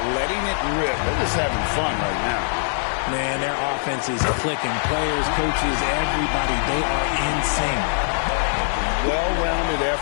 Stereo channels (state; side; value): silent; right; digital silence